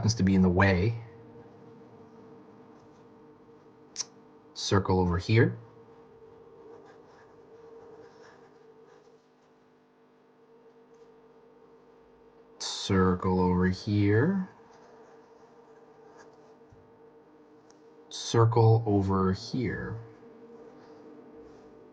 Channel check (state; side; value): identical; both; correlation 1.00